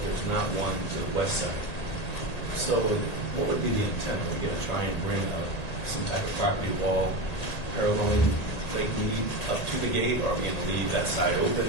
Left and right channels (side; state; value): right; late; 1.8 ms